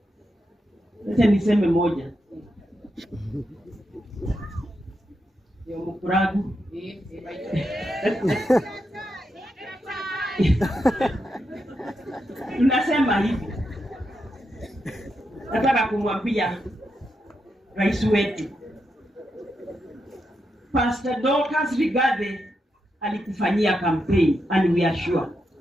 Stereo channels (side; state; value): both; normal; correlation 0.84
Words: Acha niseme moja. Yo mkuragu. Tunasema hivi. Nataka kumwambia rais wetu Pastor Dorcas Rigathi alikufanyia campaign, and we are sure.